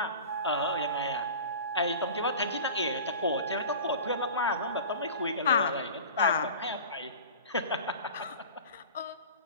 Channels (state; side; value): inverted; both; correlation -0.37